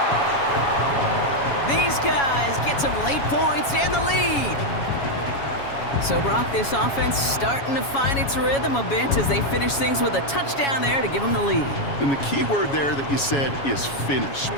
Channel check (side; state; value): right; late; 7.2 ms